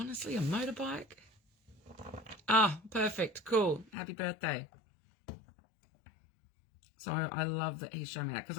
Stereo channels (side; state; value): right; drops out; at 3.9 s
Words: a motorbike? Ah, perfect. Cool. Happy birthday. So I love that he's showing me that. Because